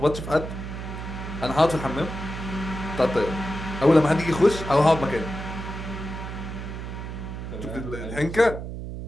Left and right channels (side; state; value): right; noise; hum, 7 dB below the sound